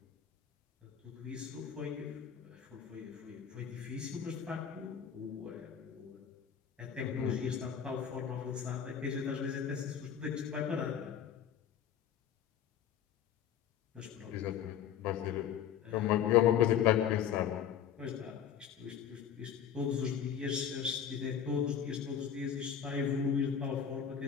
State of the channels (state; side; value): quieter; right; 8.6 dB